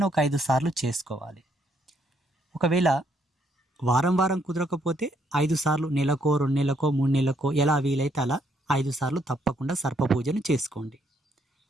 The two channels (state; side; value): normal; both; correlation 0.71